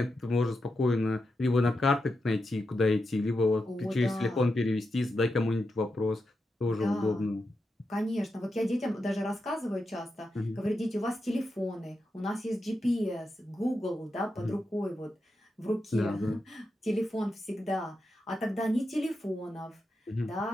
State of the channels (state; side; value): normal; both; correlation 0.87